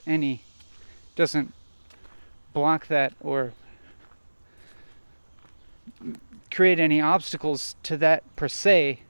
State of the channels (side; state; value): both; inverted; correlation -1.00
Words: block that or create any obstacles to that per se,